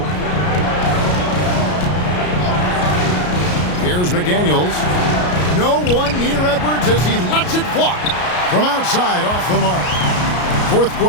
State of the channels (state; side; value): late; right; 33 ms